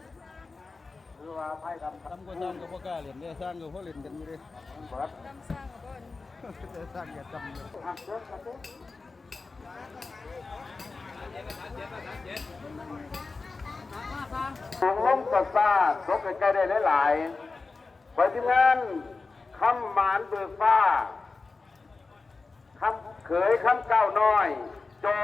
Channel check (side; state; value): right; quieter; 4.0 dB